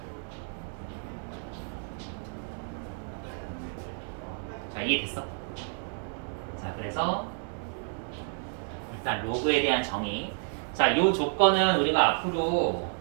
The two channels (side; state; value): left; silent; 56 dB below the other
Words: 자, 이해됐어? 자, 그래서 일단 로그에 대한 정의. 자, 요 조건은 우리가 앞으로